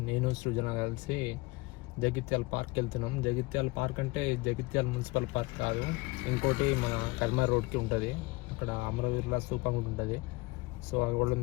నేను సృజన కలిసి జగిత్యాల పార్క్ వెళ్తున్నాం. జగిత్యాల పార్క్ అంటే జగిత్యాల మున్సిపల్ పార్క్ కాదు, ఇంకోటి మన కర్మార్ రోడ్కి ఉంటుంది. అక్కడ అమరవీరుల స్తూపం కూడా ఉంటుంది. సో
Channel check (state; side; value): quieter; right; 23.2 dB